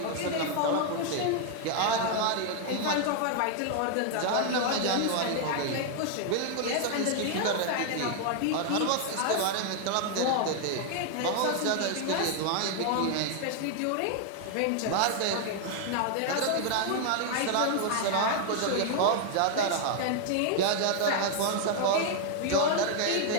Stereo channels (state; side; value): different; both; correlation 0.00